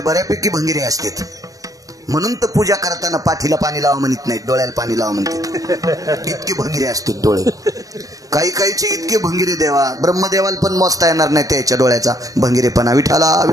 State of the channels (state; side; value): late; left; 0.17 ms